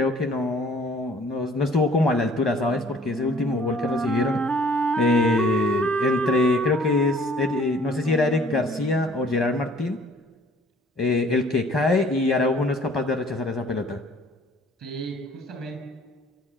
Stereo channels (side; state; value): both; normal; correlation 0.55